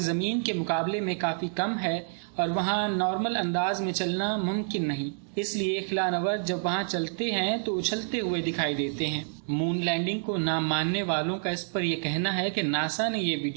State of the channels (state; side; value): silent; left; digital silence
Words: زمین کے مقابلے میں کافی کم ہے اور وہاں نارمل انداز میں چلنا ممکن نہیں، اس لیے خلا نورد جب وہاں چلتے ہیں تو اچھلتے ہوئے دکھائی دیتے ہیں۔ مون لینڈنگ کو نہ ماننے والوں کا اس پر یہ کہنا ہے کہ ناسا نے یہ